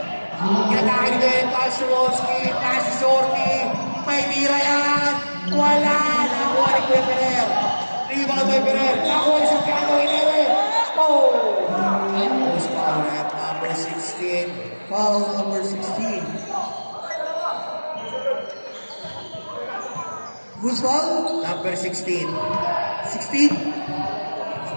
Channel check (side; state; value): both; inverted; correlation -1.00